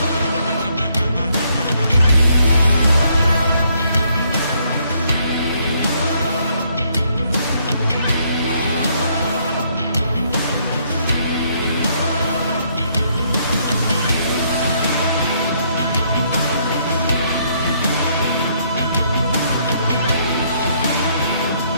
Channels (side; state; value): both; inverted; correlation -0.70